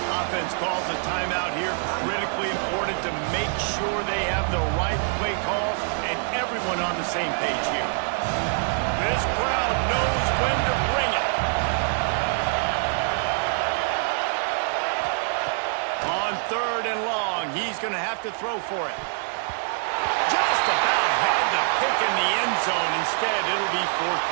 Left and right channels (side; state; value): left; silent; 57 dB below the other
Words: Offense calls a timeout here. Critically important to make sure they have the right play call and everyone on the same page here. This crowd knows when to bring it. On third and long, he's going to have to throw for it. Just about had to pick in the end zone. Instead, it'll be fourth